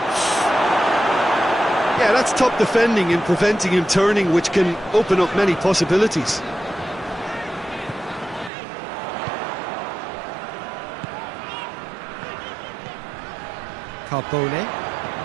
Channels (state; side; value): drops out; left; at 8.5 s